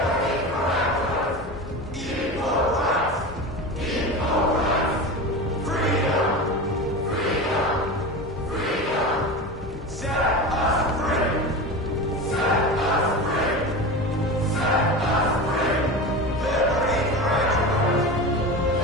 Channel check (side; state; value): both; normal; correlation 0.27